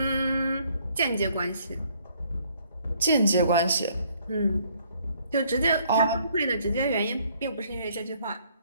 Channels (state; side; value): inverted; both; correlation -0.64